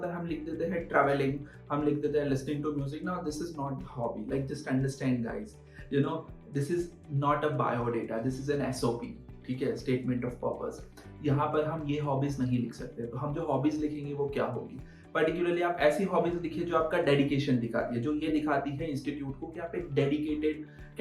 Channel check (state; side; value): identical; both; correlation 1.00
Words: है हम लिख देते हैं ट्रैवलिंग, हम लिख देते हैं listening to music. Now this is not hobby. Like just understand guys, you know this is not a biodata, this is an SOP. ठीक है, स्टेटमेंट ऑफ पर्पस. यहाँ पर हम ये हॉबीज नहीं लिख सकते. तो हम जो हॉबीज लिखेंगे वो क्या होगी. पर्टिकुलरली आप ऐसी हॉबीज लिखिए जो आपका डेडिकेशन दिखाती है, जो ये दिखाती है इंस्टीट्यूट को कि आप एक डेडिकेटेड